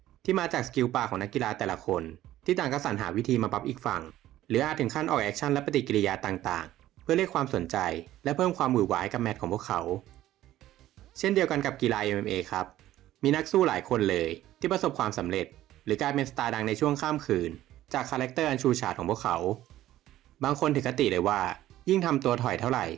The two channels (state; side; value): quieter; left; 14.0 dB